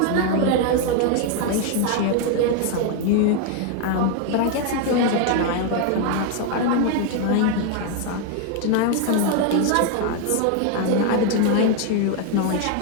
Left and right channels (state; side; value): different; both; correlation 0.01